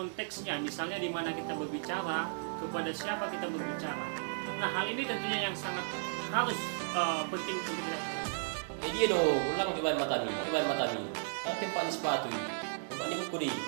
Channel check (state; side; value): silent; left; digital silence